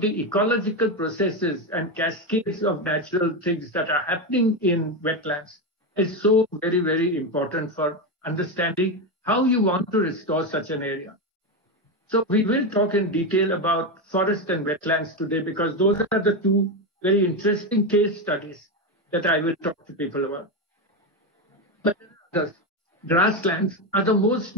the ecological processes and cascades of natural things that are happening in wetlands is so very, very important for understanding how you want to restore such an area. So we will talk in detail about forest and wetlands today, because those are the two very interesting case studies that I will talk to people about. But the grasslands are the most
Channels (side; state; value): both; normal; correlation 0.12